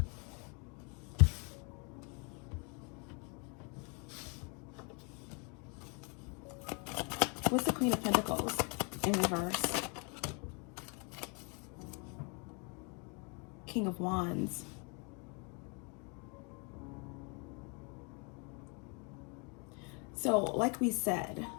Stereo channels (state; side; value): quieter; right; 34.2 dB